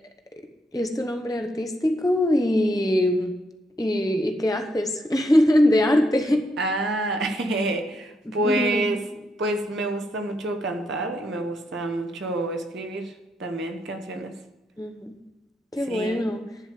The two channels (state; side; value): normal; both; correlation 0.78